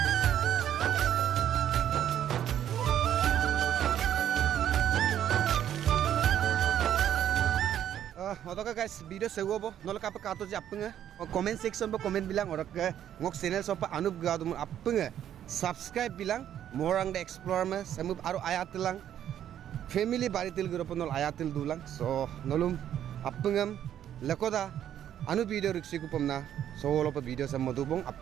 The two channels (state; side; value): quieter; left; 10.5 dB